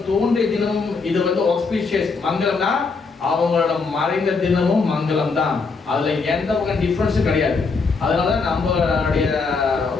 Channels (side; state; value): right; quieter; 4.5 dB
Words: தோன்றிய தினமும் இது வந்து ஆஸ்பிஷியஸ் மங்களம் தான், அவங்களோட மறைந்த தினமும் மங்களம் தான். அதுல எந்த வகை டிஃபரன்ஸும் கிடையாது. அதனால நம்மளுடைய